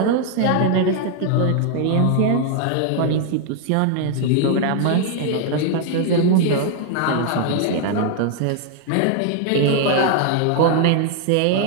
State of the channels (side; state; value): both; different; correlation 0.00